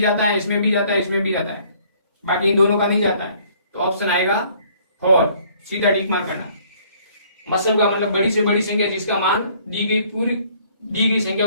जाता है, इसमें भी जाता है, इसमें भी जाता है, बाकी इन दोनों का नहीं जाता है, तो ऑप्शन आएगा 4। सीधा टिक मार करना। मसल का मतलब बड़ी से बड़ी संख्या जिसका मान दी गई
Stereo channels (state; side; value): inverted; both; correlation -0.60